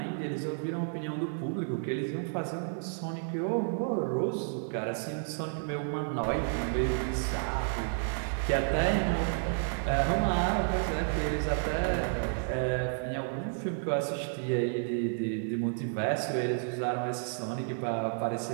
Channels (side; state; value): left; silent; digital silence